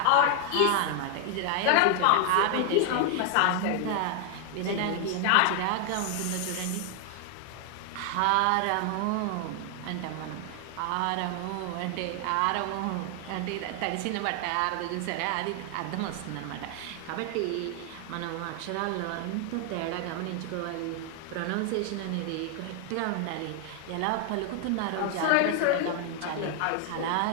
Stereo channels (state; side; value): different; both; correlation 0.00